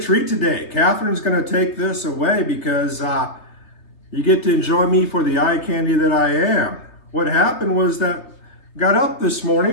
today. Catherine's going to take this away because you get to enjoy me for the eye candy that I am. What happened was that I got up this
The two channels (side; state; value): right; late; 3.3 ms